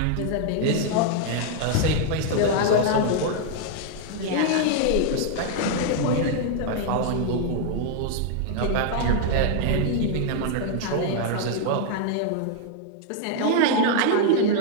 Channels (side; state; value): both; different; correlation 0.00